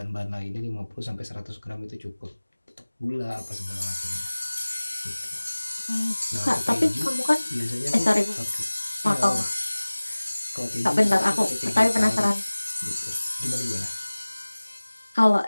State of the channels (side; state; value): both; inverted; correlation -1.00